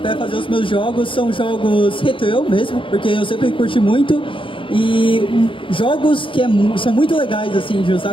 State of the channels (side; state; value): right; late; 0.25 ms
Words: para fazer os meus jogos são jogos retrô mesmo, porque eu sempre curti muito. E jogos que são muito legais assim de